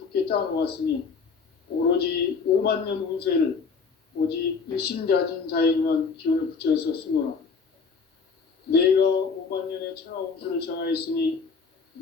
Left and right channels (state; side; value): quieter; right; 5.1 dB